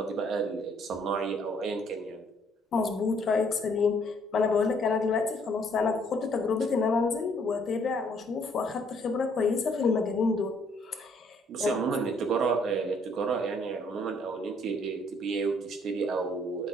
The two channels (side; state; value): both; normal; correlation 0.65